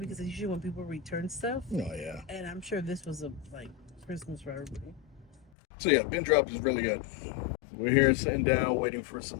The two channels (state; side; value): drops out; right; at 5.5 s